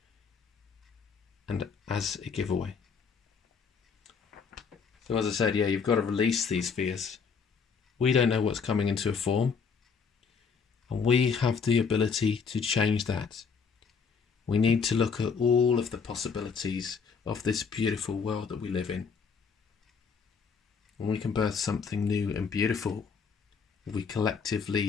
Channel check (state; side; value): quieter; right; 5.8 dB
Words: and as a giveaway. So as I said, yeah, you've got to release these fears. We don't know what's coming into a form, and we have the ability to change that. We need to look at all of the possibilities of this beautiful world that we live in. And we can birth something new and beautiful if we